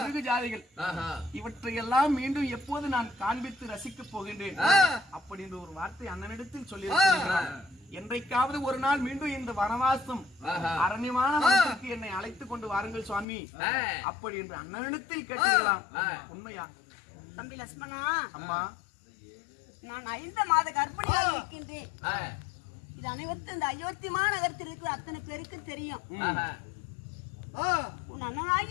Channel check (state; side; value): drops out; right; at 13.2 s